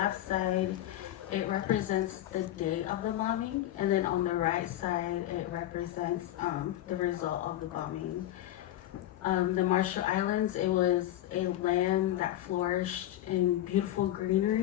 side, it represents the day of the bombing, and then on the right side, it represents the result of the bombing. The Marshall Islands, it was a land that flourished in beautiful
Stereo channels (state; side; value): quieter; right; 13.6 dB